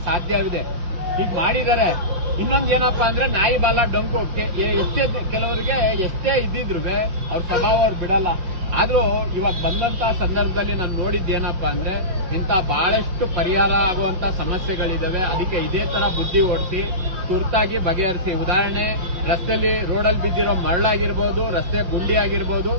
ಸಾಧ್ಯವಿದೆ. ಈಗ ಮಾಡಿದ್ದಾರೆ. ಇನ್ನೊಂದು ಏನಪ್ಪಾ ಅಂದ್ರೆ, ನಾಯಿ ಬಾಲ ಡೊಂಕು. ಕೆಲವರಿಗೆ ಎಷ್ಟೇ ಇದ್ದಿದ್ರು ಅವ್ರ ಸ್ವಭಾವ ಅವ್ರು ಬಿಡಲ್ಲ. ಆದ್ರೂ ಇವಾಗ ಬಂದಂತ ಸಂದರ್ಭದಲ್ಲಿ ನಾನು ನೋಡಿದ್ದೇನಪ್ಪಾ ಅಂದ್ರೆ, ಇಂಥ ಬಹಳಷ್ಟು ಪರಿಹಾರ ಆಗುವಂತ ಸಮಸ್ಯೆಗಳಿದಾವೆ. ಅದಕ್ಕೆ ಇದೇ ತರ ಬುದ್ಧಿ ಓಡಿಸಿ ತುರ್ತಾಗಿ ಬಗೆಹರಿಸಿ. ಉದಾಹರಣೆ, ರಸ್ತೆಯಲ್ಲಿ ರೋಡಲ್ಲಿ ಬಿದ್ದಿರೋ ಮರಳಾಗಿರ್ಬೋದು, ರಸ್ತೆ ಗುಂಡಿ ಆಗಿರ್ಬೋದು,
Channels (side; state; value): left; late; 5.6 ms